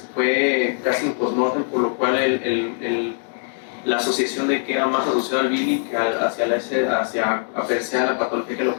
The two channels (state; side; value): silent; right; 64 dB below the other